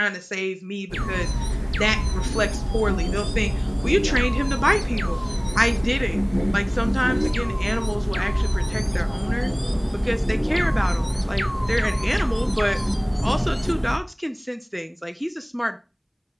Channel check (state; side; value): identical; both; correlation 1.00